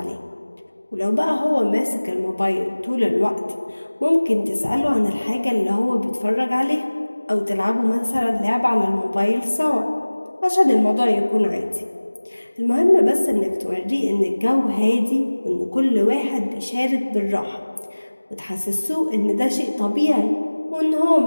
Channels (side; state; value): both; inverted; correlation -1.00